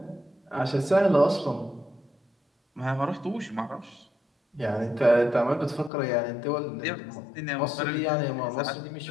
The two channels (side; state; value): right; drops out; at 5.9 s